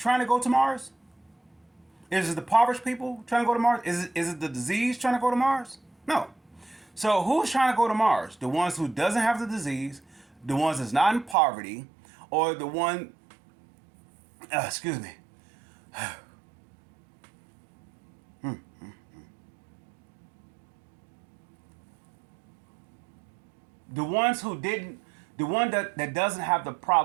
to go to Mars? Is it the impoverished people trying to go to Mars? Is it the disease trying to go to Mars? No. So who's trying to go to Mars? The ones who doesn't have the disease, the ones that's not in poverty, or the one. Excuse me. The ones who didn't, the one that doesn't have the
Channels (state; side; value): drops out; left; at 11.4 s